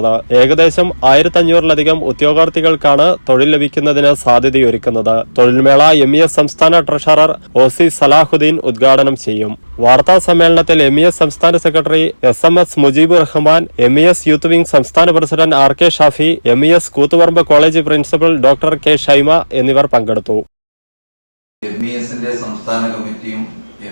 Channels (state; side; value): inverted; both; correlation -1.00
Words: ഏകദേശം 1500ലധികം ഉദ്യോഗാർത്ഥികൾക്കാണ് തൊഴിൽ ലഭിക്കുന്നതിന് സാധ്യതയൊരുക്കുന്നത്. തൊഴിൽമേള MES സംസ്ഥാന ട്രഷറർ OC സലാഹുദ്ദീൻ ഉദ്ഘാടനം ചെയ്യും. വാർത്താ സമ്മേളനത്തിൽ MES സംസ്ഥാന secretary SMS Mujeebur Rahman, MES youth wing സംസ്ഥാന president RK Shafi, MES Koothuparamba college principal doctor K Shaima എന്നിവർ പങ്കെടുത്തു. MESന്റെ സംസ്ഥാന കമ്മിറ്റിയും